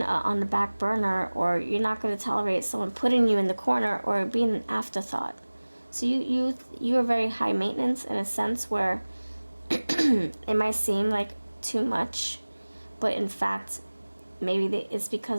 on the back burner, or you're not going to tolerate someone putting you in the corner or being an afterthought. So you are very high maintenance in a sense where it might seem like too much, but in fact maybe it's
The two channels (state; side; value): inverted; both; correlation -1.00